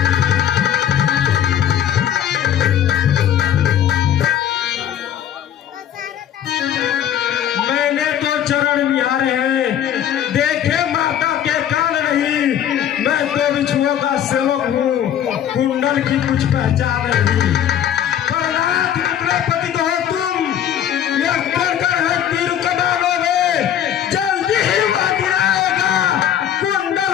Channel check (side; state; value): right; quieter; 10.2 dB